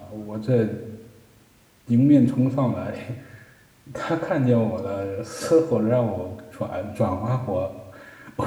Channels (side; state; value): both; identical; correlation 1.00